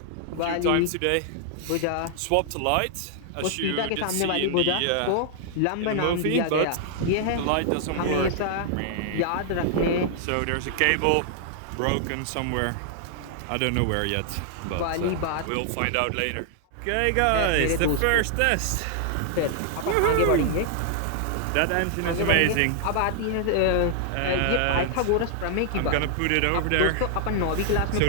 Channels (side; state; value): both; different; correlation 0.00